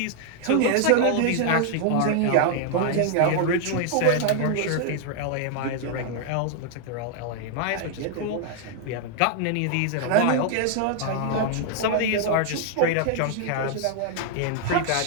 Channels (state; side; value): different; both; correlation 0.00